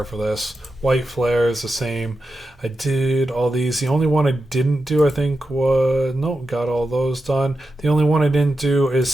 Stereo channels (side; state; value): both; normal; correlation 0.90